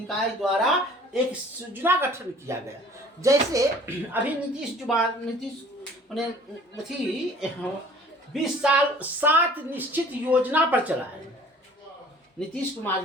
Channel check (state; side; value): normal; both; correlation 0.50